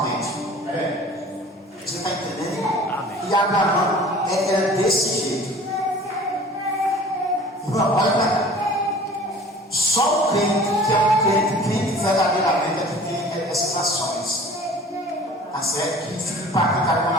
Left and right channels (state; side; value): normal; both; correlation 0.45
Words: Você está entendendo? Amém. E Abraão era desse jeito. Irmão, olha para cá. Só o crente que é um crente verdadeiramente é que tem essas ações. Tá certo? Que fica impactado quando